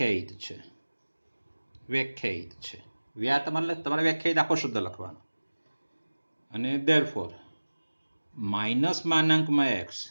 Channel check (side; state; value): both; inverted; correlation -1.00